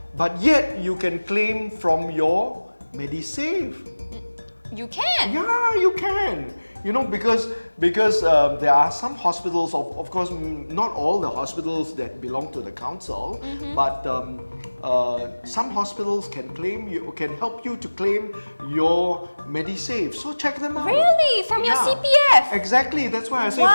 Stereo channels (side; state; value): both; inverted; correlation -1.00